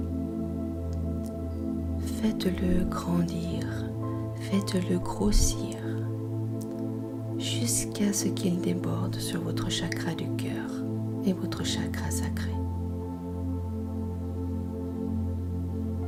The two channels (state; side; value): identical; both; correlation 1.00